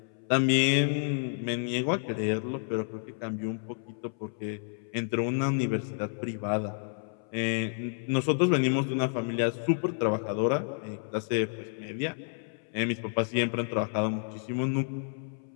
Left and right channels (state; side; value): silent; right; 58 dB below the other